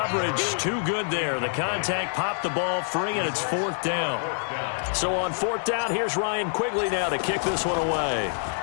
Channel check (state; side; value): silent; right; 61 dB below the other